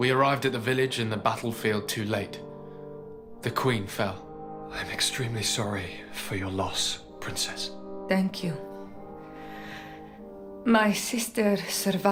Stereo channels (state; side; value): identical; both; correlation 1.00